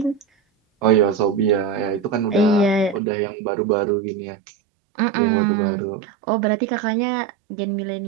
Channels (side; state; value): left; drops out; at 3.0 s